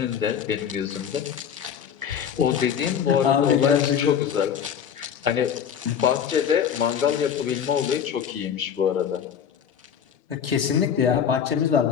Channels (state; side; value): quieter; right; 8.3 dB